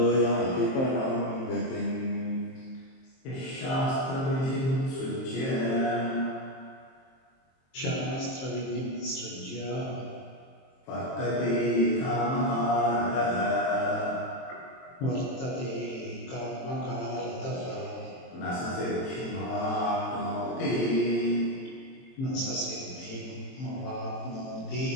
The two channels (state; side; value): late; right; 23 ms